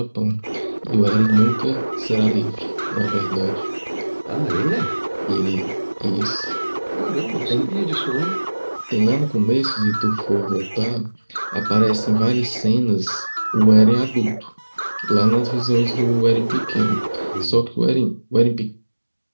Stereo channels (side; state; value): both; inverted; correlation -1.00